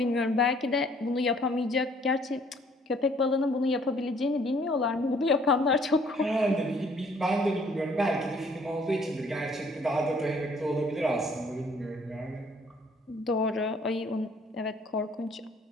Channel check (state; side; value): normal; both; correlation 0.61